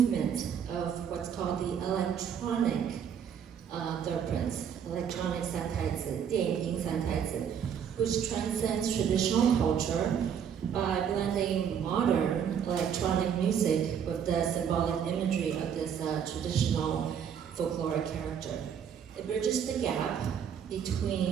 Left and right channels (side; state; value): left; quieter; 8.1 dB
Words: of what's called the electronic third prince, electronic Santaizhi, 电影 Santaizhi, which transcends traditional culture by blending modern electronic music with the symbolic imagery of this traditional folkloric character. It bridges the gap